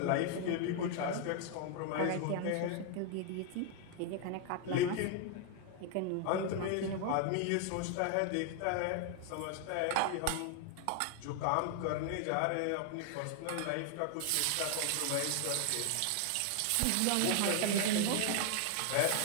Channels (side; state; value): both; different; correlation 0.00